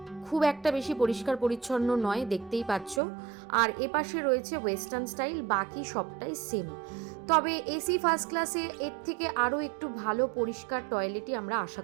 খুব একটা বেশি পরিষ্কার পরিচ্ছন্ন নয়, দেখতেই পাচ্ছ। আর এপাশে রয়েছে ওয়েস্টার্ন স্টাইল, বাকি সবটাই সেম। তবে এসি ফার্স্ট ক্লাসে এর থেকে আরও একটু ভালো পরিষ্কার টয়লেটই আমরা আশা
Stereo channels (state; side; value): drops out; left; at 3.0 s